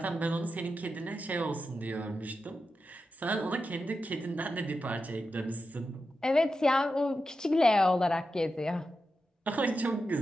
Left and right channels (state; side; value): normal; both; correlation 0.89